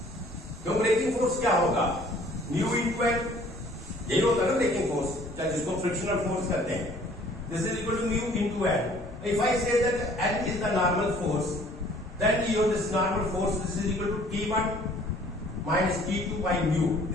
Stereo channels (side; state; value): both; normal; correlation 0.55